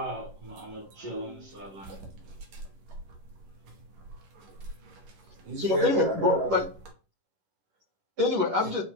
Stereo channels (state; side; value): late; left; 10 ms